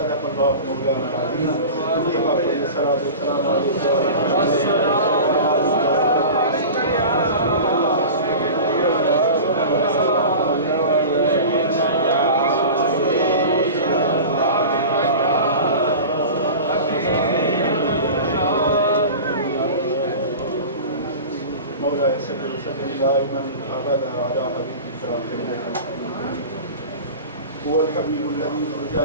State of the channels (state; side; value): inverted; both; correlation -0.34